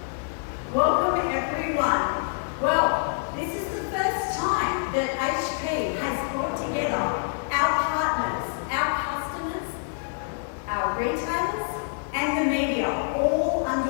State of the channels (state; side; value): silent; right; digital silence